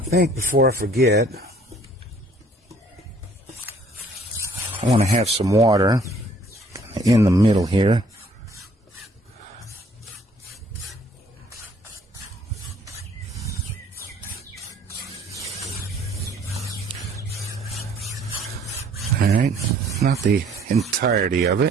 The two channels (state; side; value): normal; both; correlation 0.59